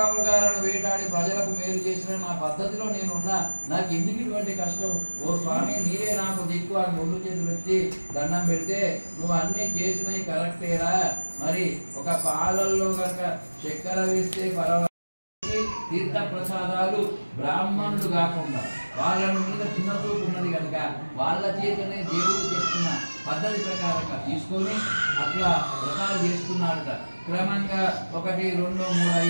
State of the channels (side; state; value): both; inverted; correlation -1.00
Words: వేటాడి ప్రజలకు మేలు చేసిన నా పద్ధతిలో నేనున్నా, నాకు ఎందుకు ఇటువంటి కష్టం? ఓ స్వామి, నీరే నాకు దిక్కు అని ముందు చేతులు ఎత్తి దండం పెడితే, నువ్వు అన్ని చేసినవి కరెక్టేరా, మరి ఒక పాలల్లో కనుక చక్కెర వేస్తే పర్వాలేదు, తీర్థ ప్రసాదాలు బ్రాహ్మణులు కాకుండా వాళ్ళ మీద చిన్న చూపు ఉన్నది కనుక వాళ్ళ చేతనే దేవుడు చెప్తున్న పద్ధతి ప్రకారంగా తీసుకొని అట్లా వ్రతాలు చేస్తున్నాడట. క్రమంగా 1, 2, 3